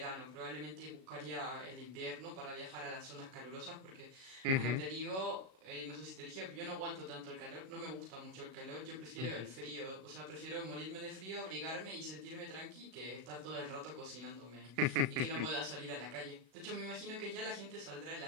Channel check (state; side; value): late; left; 37 ms